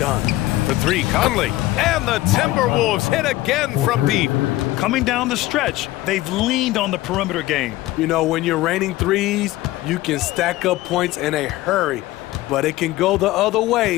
For 3, Conley. And the Timberwolves hit again from deep. Coming down the stretch, they've leaned on the perimeter game. You know, when you're raining threes, you can stack up points in a hurry, but it can go the other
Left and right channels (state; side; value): quieter; right; 17.0 dB